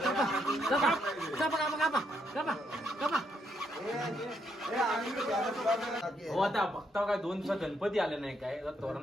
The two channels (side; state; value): both; normal; correlation 0.76